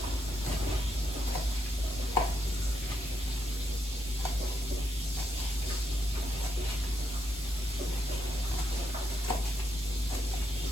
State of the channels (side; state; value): both; normal; correlation 0.79